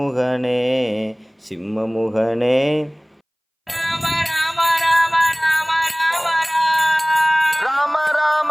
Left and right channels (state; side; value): identical; both; correlation 1.00